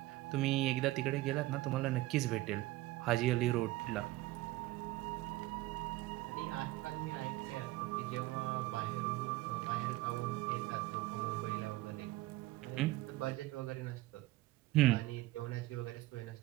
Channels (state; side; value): quieter; left; 18.1 dB